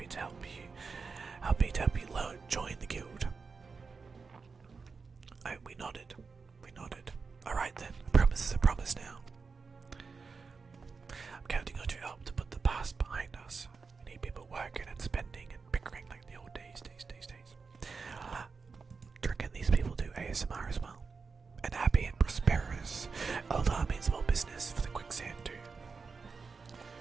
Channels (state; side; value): quieter; left; 4.9 dB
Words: to help you. Join the guild. We nodded. Alright then, a promise is a promise now. I'm counting on your help to put the past behind us. We need people working and spending and bickering like the old days. Do you reckon these people do ASMR as well? And happy and prosperous. Ultar means more business for the Quicksand too.